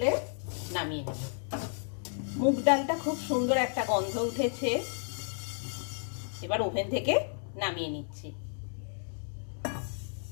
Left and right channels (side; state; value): right; silent; digital silence